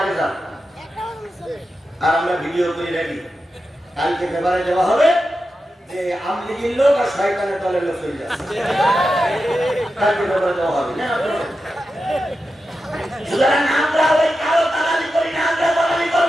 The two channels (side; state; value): both; normal; correlation 0.90